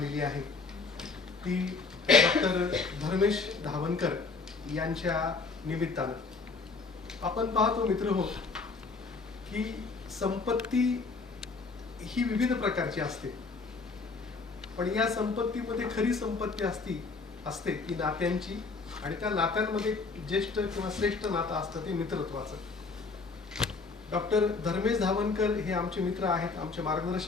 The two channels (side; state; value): right; quieter; 4.3 dB